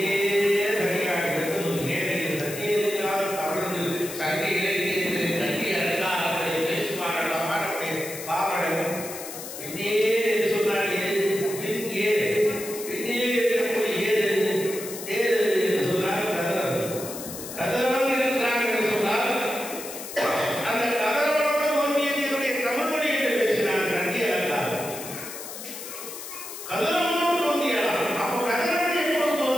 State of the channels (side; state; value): left; noise; hiss, 10 dB below the sound